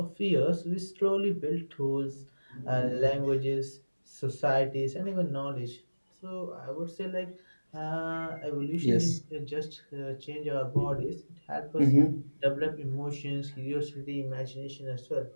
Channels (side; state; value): both; inverted; correlation -1.00